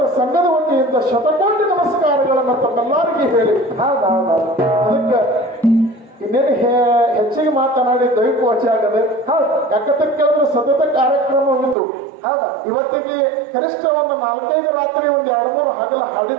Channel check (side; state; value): left; drops out; at 11.8 s